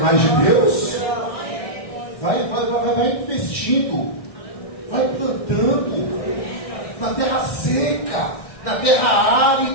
de Deus? Vai investindo. Vai plantando na terra seca, na terra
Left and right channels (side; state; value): right; late; 1.6 ms